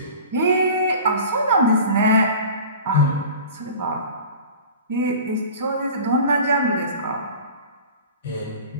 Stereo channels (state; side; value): inverted; both; correlation -0.39